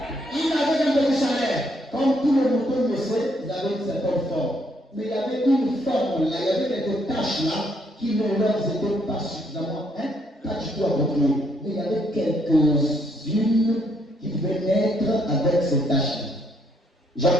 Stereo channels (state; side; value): normal; both; correlation 0.71